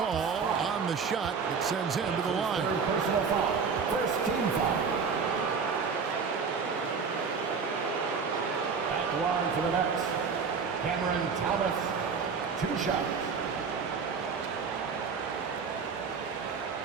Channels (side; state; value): left; quieter; 5.6 dB